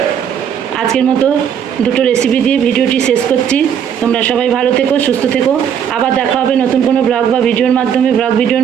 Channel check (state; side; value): quieter; left; 8.4 dB